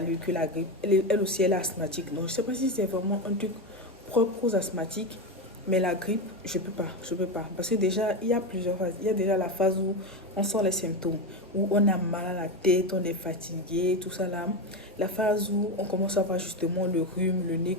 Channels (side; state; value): both; normal; correlation 0.15